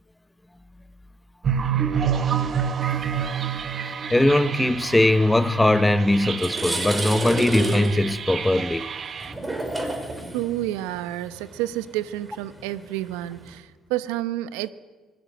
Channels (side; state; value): both; normal; correlation 0.77